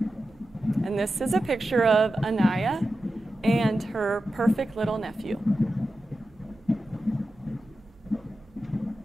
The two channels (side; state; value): both; normal; correlation 0.92